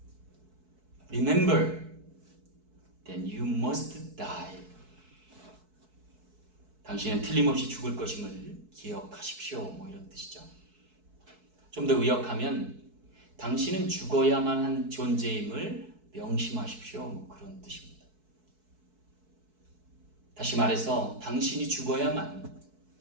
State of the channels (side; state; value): left; late; 4.6 ms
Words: Remember that you must die. 당신은 틀림없이 죽을 것임을 기억하십시오. 뭐 이런 뜻이죠. 좀 더 의역하면 당신은 죽어야만 한 존재임을 명심하십시오. 뭐 그런 뜻입니다. 다시 말해서 당신이 죽어야만